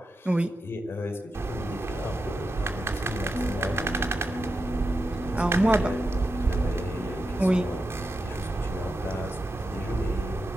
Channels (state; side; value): normal; both; correlation 0.88